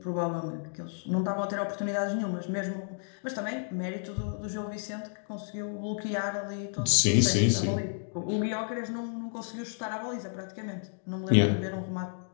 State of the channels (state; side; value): silent; right; digital silence